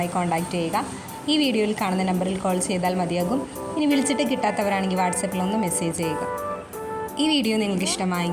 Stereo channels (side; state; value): both; identical; correlation 1.00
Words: കോൺടാക്റ്റ് ചെയ്യുക. ഈ വീഡിയോയിൽ കാണുന്ന നമ്പറിൽ കോൾ ചെയ്താൽ മതിയാകും. ഇനി വിളിച്ചിട്ട് കിട്ടാത്തവരാണെങ്കിൽ വാട്സപ്പിൽ ഒന്ന് മെസ്സേജ് ചെയ്യുക. ഈ വീഡിയോ നിങ്ങൾക്ക്